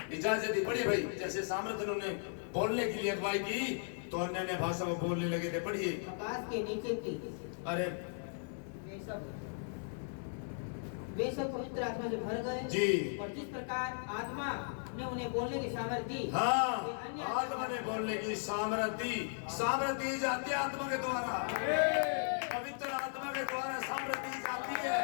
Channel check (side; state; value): right; silent; digital silence